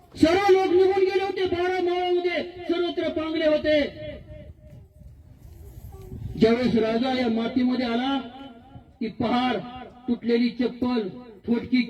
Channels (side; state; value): both; identical; correlation 1.00